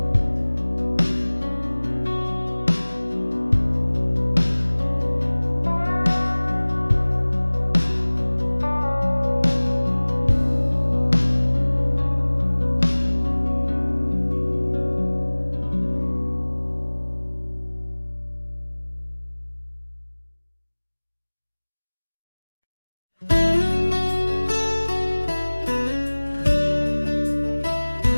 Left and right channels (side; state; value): both; inverted; correlation -1.00